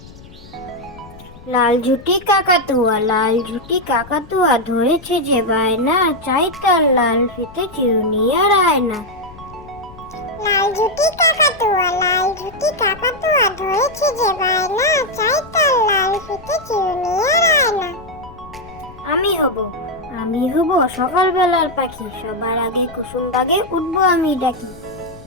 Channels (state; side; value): noise; left; rumble, 20 dB below the sound